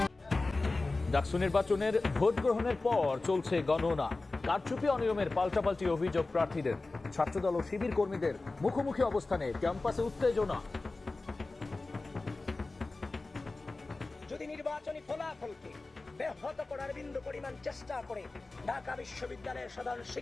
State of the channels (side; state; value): right; quieter; 3.4 dB